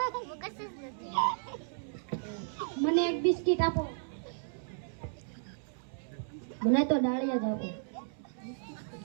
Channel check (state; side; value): silent; left; 55 dB below the other